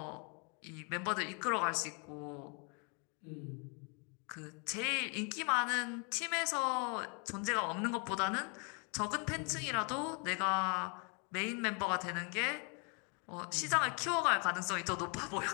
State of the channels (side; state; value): right; quieter; 35.5 dB